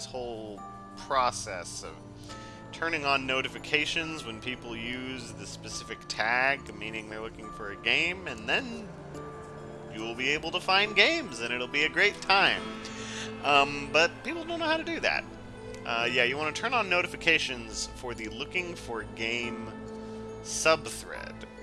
whole process of turning on notifications when people use the specific tag, meaning they're looking for a game, and then you'll be able to find games, and it'll be a great time. But people don't know how to do that. Yeah, you want to turn on notifications for the looking for game subthread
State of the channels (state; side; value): identical; both; correlation 1.00